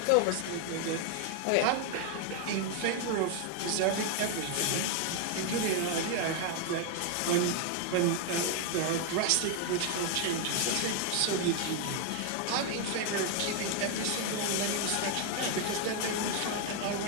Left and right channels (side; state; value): both; different; correlation 0.00